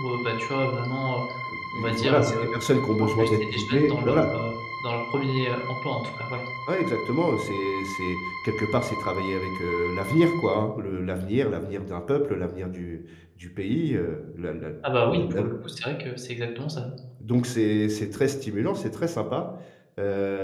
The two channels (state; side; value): identical; both; correlation 1.00